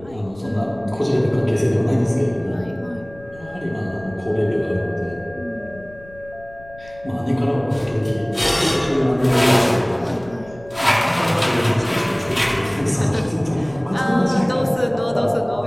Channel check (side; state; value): left; noise; rumble, 21 dB below the sound